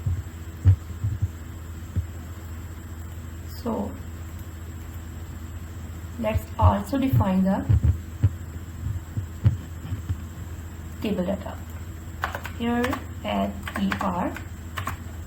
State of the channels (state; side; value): identical; both; correlation 1.00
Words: So let's also define the table data. Here add er